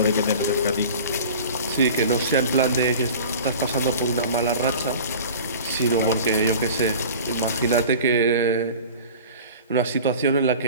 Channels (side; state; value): both; inverted; correlation -0.39